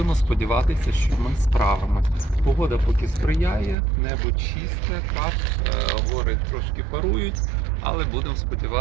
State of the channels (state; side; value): drops out; left; at 3.8 s